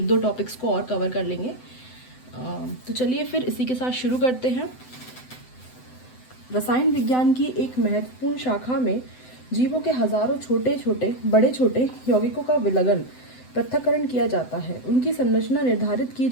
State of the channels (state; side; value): late; right; 7.9 ms